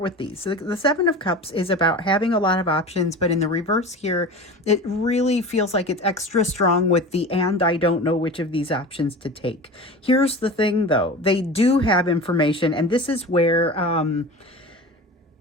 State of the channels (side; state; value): both; normal; correlation 0.33